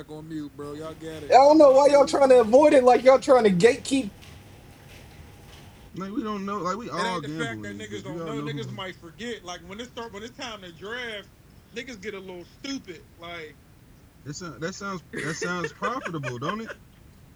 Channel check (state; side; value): identical; both; correlation 1.00